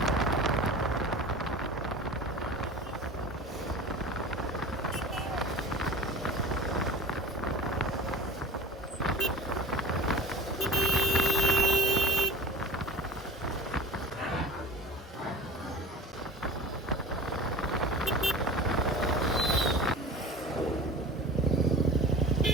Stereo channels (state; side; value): normal; both; correlation 0.33